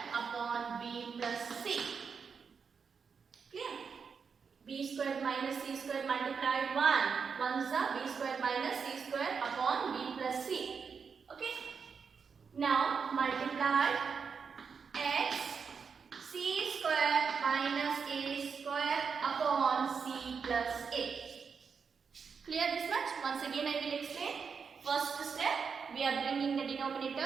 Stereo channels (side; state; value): left; quieter; 5.9 dB